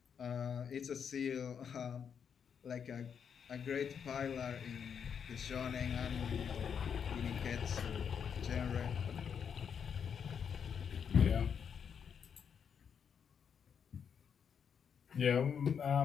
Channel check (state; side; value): quieter; right; 7.3 dB